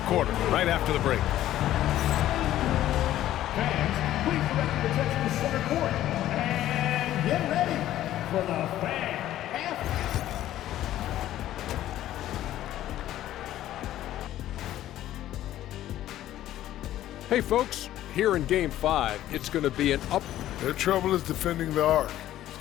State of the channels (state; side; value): quieter; right; 13.2 dB